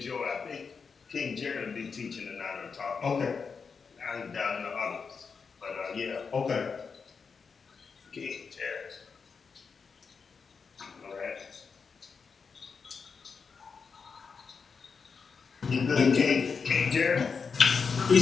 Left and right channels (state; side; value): quieter; right; 5.5 dB